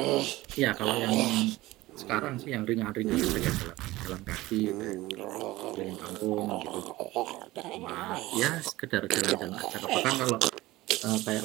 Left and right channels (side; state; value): left; quieter; 18.4 dB